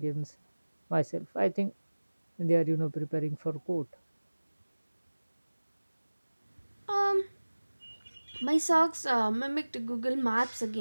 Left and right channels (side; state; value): both; inverted; correlation -1.00